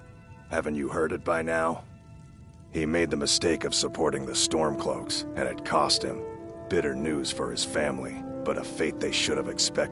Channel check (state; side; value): identical; both; correlation 1.00